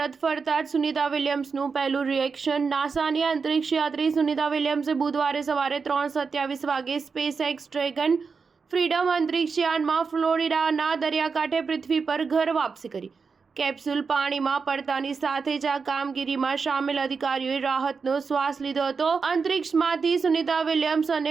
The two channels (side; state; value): left; quieter; 5.2 dB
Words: ફરતા જ સુનિતા વિલિયમ્સનું પહેલું રિએક્શન। નાસાની અંતરિક્ષ યાત્રી સુનિતા વિલિયમ્સે બુધવારે સવારે 3:27 વાગે સ્પેસએક્સ ડ્રેગન ફ્રીડમ અંતરિક્ષ યાનમાં ફ્લોરિડાના દરિયાકાંઠે પૃથ્વી પર ઘર વાપસી કરી। કેપ્સ્યુલ પાણીમાં પડતાની સાથે જ આ કામગીરીમાં સામેલ અધિકારીઓએ રાહતનો શ્વાસ લીધો હતો। અંતરિક્ષમાંથી સુનિતા વિલિયમ્સ અને